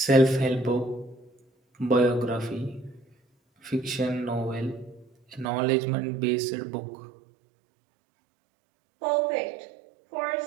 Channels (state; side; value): drops out; left; at 5.5 s